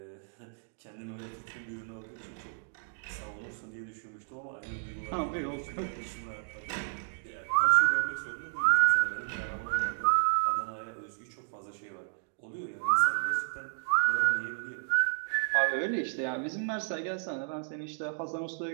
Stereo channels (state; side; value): silent; left; digital silence